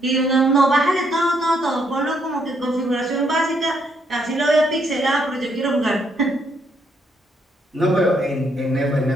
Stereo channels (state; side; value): normal; both; correlation 0.73